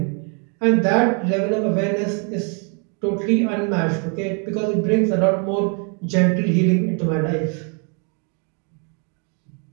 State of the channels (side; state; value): left; quieter; 38.2 dB